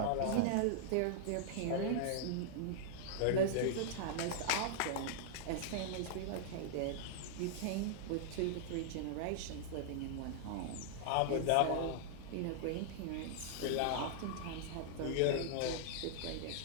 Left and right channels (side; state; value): both; different; correlation -0.01